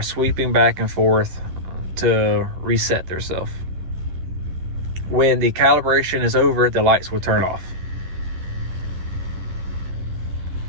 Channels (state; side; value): late; left; 11 ms